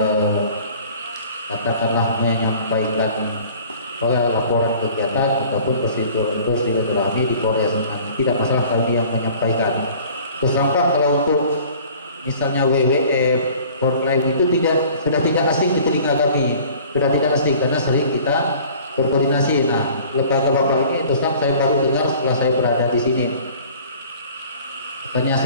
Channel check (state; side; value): inverted; both; correlation -0.48